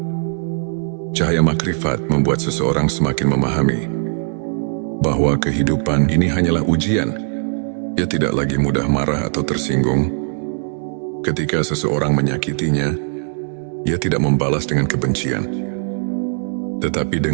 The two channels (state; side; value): silent; left; digital silence